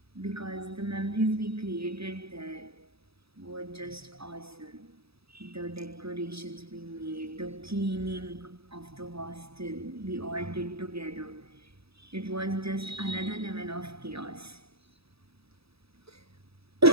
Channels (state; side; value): late; left; 0.77 ms